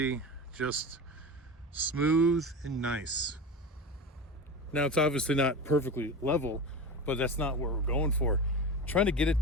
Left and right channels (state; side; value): normal; both; correlation 0.27